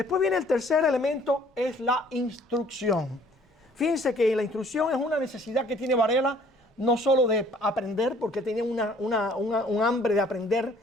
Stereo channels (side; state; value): both; normal; correlation 0.57